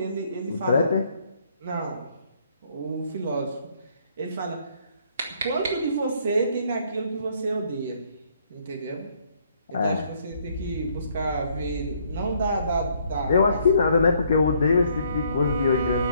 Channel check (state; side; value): inverted; both; correlation -0.67